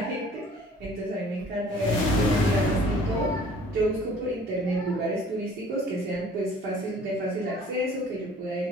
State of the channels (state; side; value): normal; both; correlation 0.52